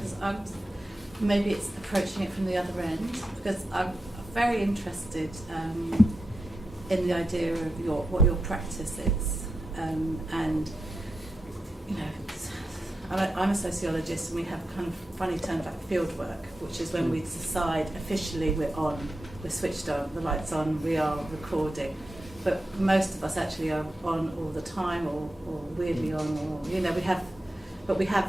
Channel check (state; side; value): normal; both; correlation 0.89